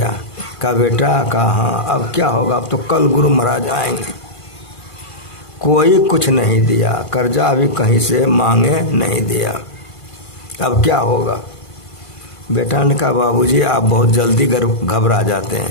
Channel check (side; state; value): right; late; 1.5 ms